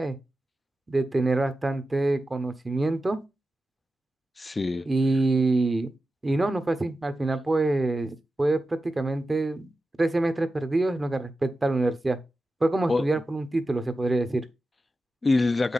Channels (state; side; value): normal; both; correlation 0.92